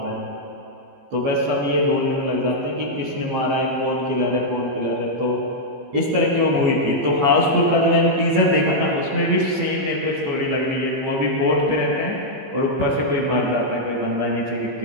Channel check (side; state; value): left; late; 15 ms